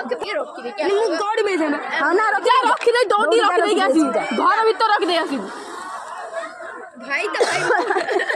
ମୁଁ ଗଡ଼ି ବେଜେ ନା ହଁ ନା ଯା ରଖିଦେ ଦୌଡ଼ି ରଖିଦେଇକି ଆସିବୁ ଘର ଭିତରେ ରଖିଦେଇ ଆସିବୁ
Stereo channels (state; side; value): identical; both; correlation 1.00